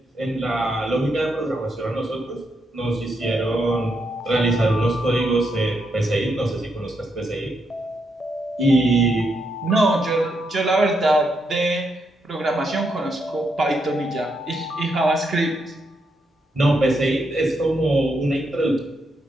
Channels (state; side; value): normal; both; correlation 0.80